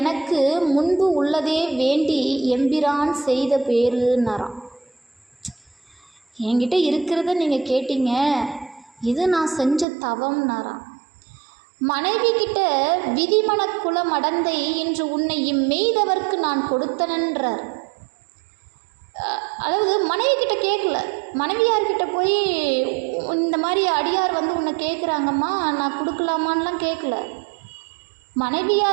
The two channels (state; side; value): drops out; left; at 9.9 s